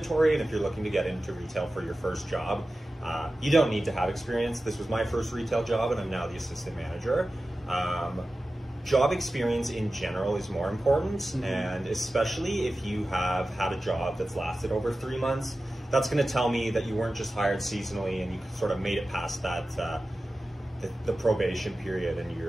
and if you're looking to get into retail for your first job, you don't need to have experience. This was my first retail job, and I'm now the assistant manager. Job experience in general is more important, and especially if you have had a job that's lasted over 3 months, that's going to tell me that you weren't just hired seasonally and you sort of made it past that the probation period, and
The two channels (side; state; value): both; normal; correlation 0.94